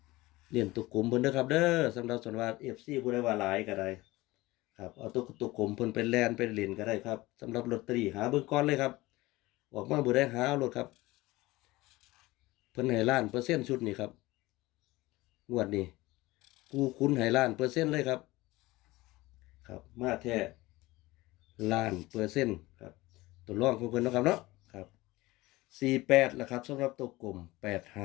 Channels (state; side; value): quieter; right; 19.8 dB